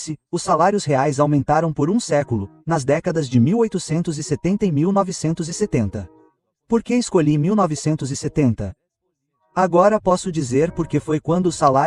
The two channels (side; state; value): both; identical; correlation 1.00